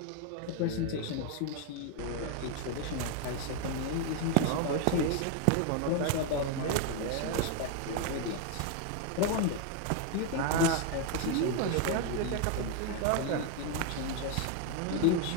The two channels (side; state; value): both; different; correlation 0.01